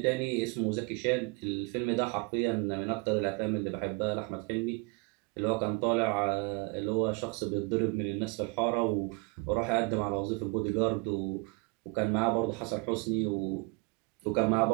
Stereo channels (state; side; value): quieter; left; 28.6 dB